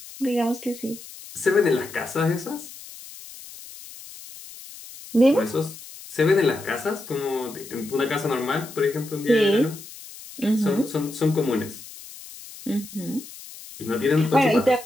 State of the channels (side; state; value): left; noise; hiss, 16 dB below the sound